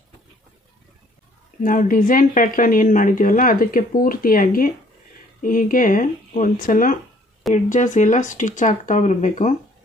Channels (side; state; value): both; normal; correlation 0.60